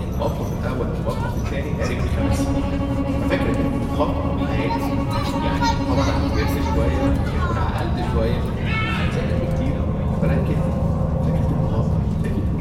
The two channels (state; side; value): identical; both; correlation 1.00